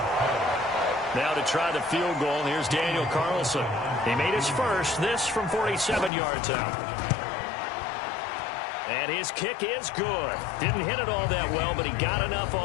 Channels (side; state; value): right; drops out; at 6.1 s